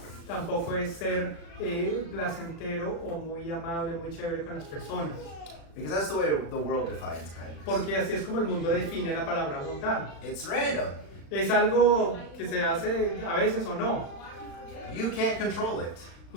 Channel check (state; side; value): late; right; 36 ms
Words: Tampoco es ser placentero o muy amable, muy chévere con las personas. Because that's the way the world defines kindness. Porque así es como el mundo define la palabra bondad. It's random. Es algo que se hace a veces o no. You can't control it.